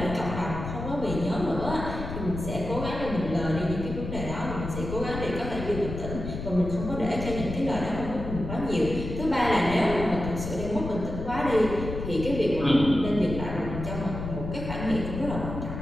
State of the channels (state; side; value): noise; left; rumble, 6 dB below the sound